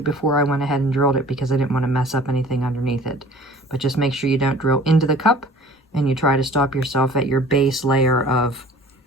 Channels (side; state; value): both; normal; correlation 0.47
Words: before I went ahead and drilled it, because I didn't want to mess up anything underneath it. But just make sure you don't drill into the cup, and you try to stop yourself at your base layer of